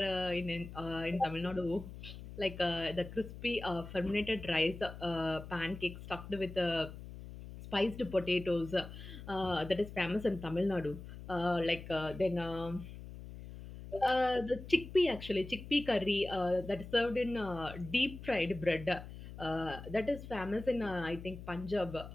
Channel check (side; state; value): left; noise; hum, 12 dB below the sound